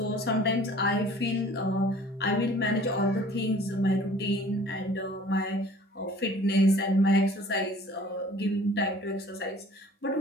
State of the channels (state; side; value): normal; both; correlation 0.50